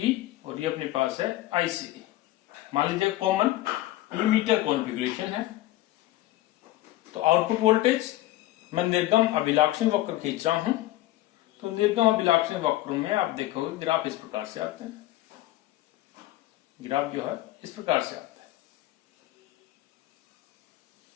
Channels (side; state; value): right; quieter; 16.1 dB